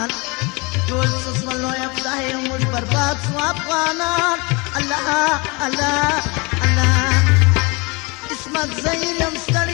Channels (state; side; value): quieter; right; 27.8 dB